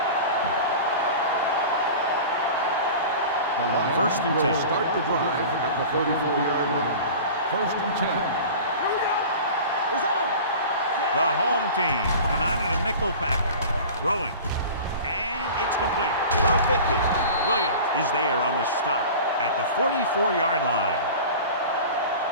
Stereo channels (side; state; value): both; inverted; correlation -0.37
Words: The Lions First and 10. will start the drive at the 34-yard line. First and 10. Here we go. It's on. The home team come out in a nickel package. Throwing. And it's complete. The 50. Williams is there on the stop at the 44-yard line.